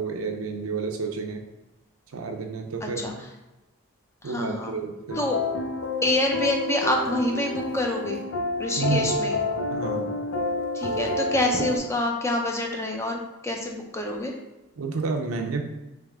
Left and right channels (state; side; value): normal; both; correlation 0.17